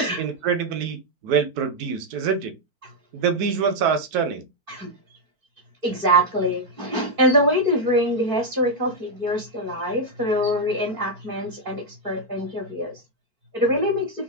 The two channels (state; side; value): late; left; 4.5 ms